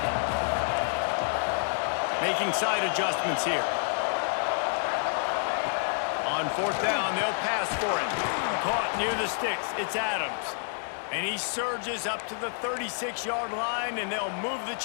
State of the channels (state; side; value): silent; right; 59 dB below the other